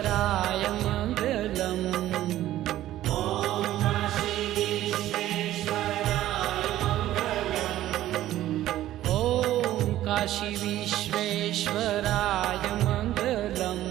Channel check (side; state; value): left; quieter; 13.9 dB